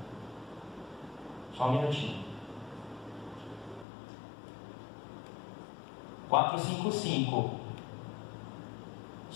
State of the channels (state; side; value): drops out; right; at 3.9 s